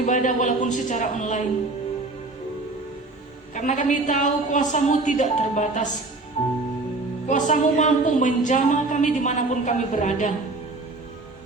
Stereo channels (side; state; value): left; quieter; 3.2 dB